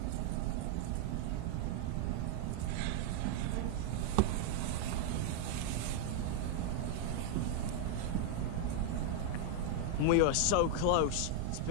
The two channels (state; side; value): different; both; correlation 0.00